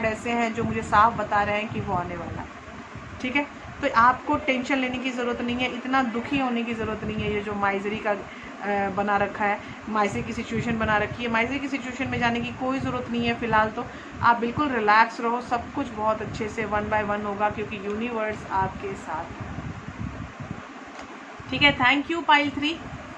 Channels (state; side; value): identical; both; correlation 1.00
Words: ऐसे हैं जो मुझे साफ बता रहे हैं कि वो आने वाला है। ठीक है, तो आपको टेंशन लेने की ज़रूरत नहीं है, इतना दुखी होने की ज़रूरत नहीं है। ये जो माइजरी का बना रखा है, माइजरी की सिचुएशन बना रखी है, माइजरी की सिचुएशन में जाने की कोई ज़रूरत नहीं है फ़िलहाल। तो आप बिल्कुल रिलैक्स रहो, सब कुछ बहुत अच्छे से 1 बाय 1 होगा, क्योंकि यूनिवर्स आपके साथ है। ठीक है, थैंक यू पाइल 3,